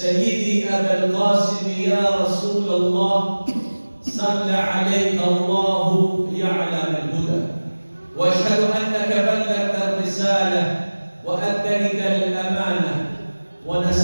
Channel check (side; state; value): both; inverted; correlation -1.00